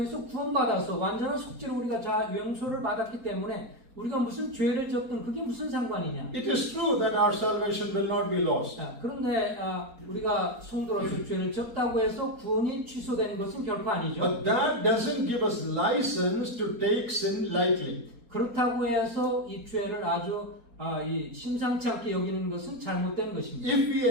구원받아서 완전한 속죄로 우리가 용서를 받았기 때문에 우리가 무슨 죄를 졌든 그게 무슨 상관이냐. It is true that our salvation will not be lost. 그런데 우리가 성도로서 죄를 졌다고 해서 구원이 취소되는 것은 결코 아니죠. But that doesn't give us license to take sin lightly. 그렇다고 해서 이 죄를 아주 이 심상치 않게 여기는 것은 잘못된 것입니다. If we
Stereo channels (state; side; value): late; left; 4.3 ms